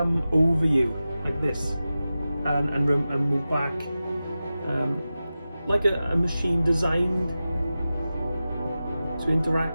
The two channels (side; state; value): both; inverted; correlation -0.94